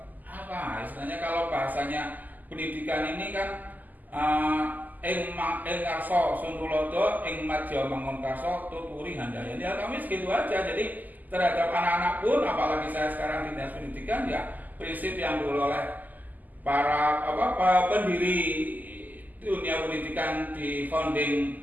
istilahnya kalau bahasanya pendidikan ini kan ing karso suntulodo ing madya mangun karso tuturi handayani. Ya kami segitu aja. Jadi terhadap anak-anak pun apalagi saya sekarang di Dinas Pendidikan ya prinsip yang dulu oleh para pendiri dunia pendidikan di founding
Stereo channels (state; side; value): late; left; 0.083 ms